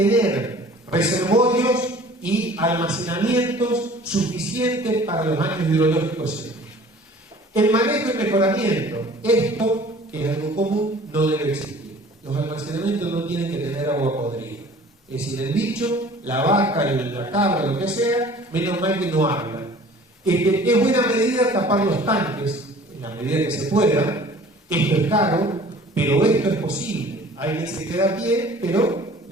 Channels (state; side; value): normal; both; correlation 0.48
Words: reservorios y almacenamientos suficientes para los años hidrológicos. El manejo y mejoramiento, esto, que es algo común, no debe existir. Los almacenamientos no tienen que tener agua podrida. Es decir, el bicho, la vaca, la cabra, lo que sea, menos mal que no hablan. Es buena medida tapar los tanques, en la medida que se pueda. Esto es caro, pero esto es posible. Alguien se queda a pie, pero